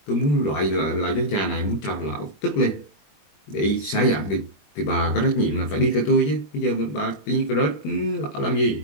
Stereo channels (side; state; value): right; late; 20 ms